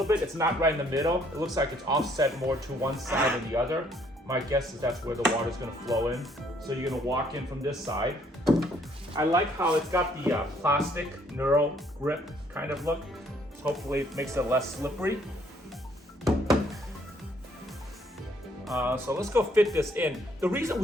bit. It's not right in the middle. It looks like it's offset more to one side than the other. My guess is that's where the water is going to flow in. So you're going to walk in from this side. I like how it's got the plastic Neuro grip kind of look. Hopefully it makes it less slippery. So let's go fit this in. The reason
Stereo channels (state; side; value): normal; both; correlation 0.65